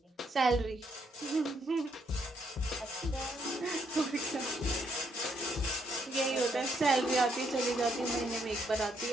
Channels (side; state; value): both; normal; correlation 0.74